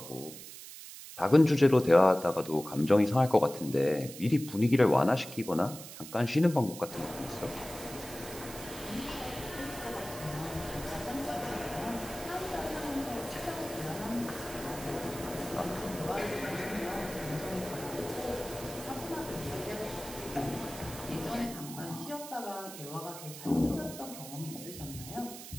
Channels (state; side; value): noise; right; hiss, 13 dB below the sound